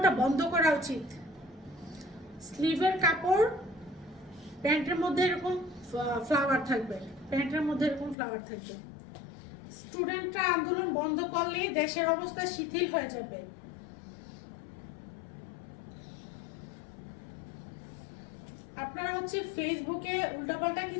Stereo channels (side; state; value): right; drops out; at 8.2 s